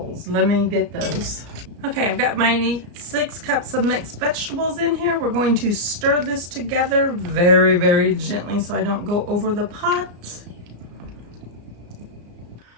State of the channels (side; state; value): left; late; 34 ms